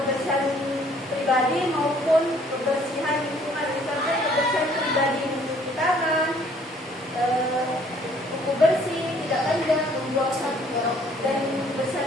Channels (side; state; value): both; normal; correlation 0.60